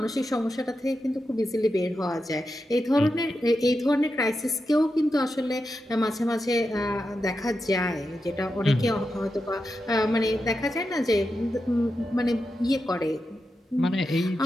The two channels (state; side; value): normal; both; correlation 0.88